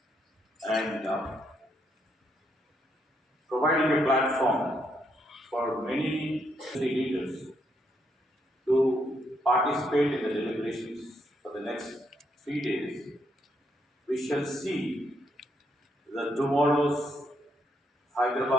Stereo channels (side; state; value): both; normal; correlation 0.76